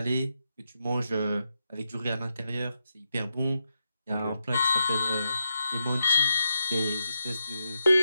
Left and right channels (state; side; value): inverted; both; correlation -0.85